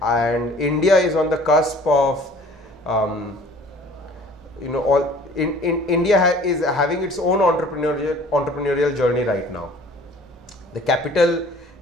and India is on the cusp of India is having its own entrepreneurial journey right now. The capital,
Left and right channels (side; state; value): both; normal; correlation 0.50